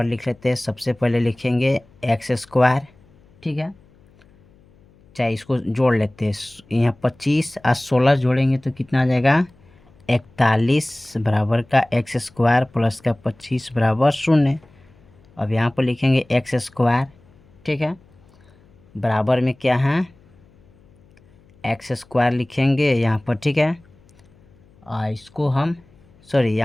लिख लेते हैं। सबसे पहले लिखेंगे एक्स स्क्वायर, ठीक है, चाहे इसको जोड़ लेते हैं। यहाँ 25 और 16 जोड़ेंगे तो कितना आ जाएगा, 41 बराबर का एक्स स्क्वायर प्लस का 25 बराबर 0। अब यहाँ पर लिखेंगे एक्स स्क्वायर, ठीक है, बराबर में क्या है, एक्स स्क्वायर लिखेंगे यहाँ पर, ठीक है। और इसको हम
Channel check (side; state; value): left; noise; hum, 29 dB below the sound